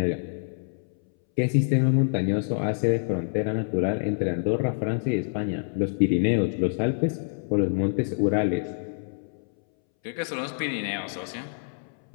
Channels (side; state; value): right; silent; 61 dB below the other